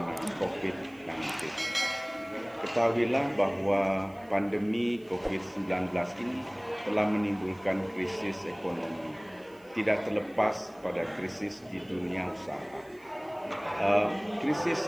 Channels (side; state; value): right; noise; hiss, 30 dB below the sound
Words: COVID-19. Ketahuilah bahwa pandemi COVID-19 ini telah menimbulkan krisis ekonomi, tidak terlepas pada krisis di dunia usaha.